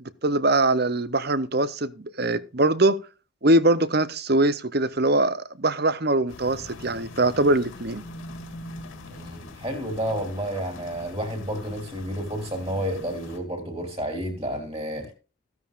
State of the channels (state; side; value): normal; both; correlation 0.02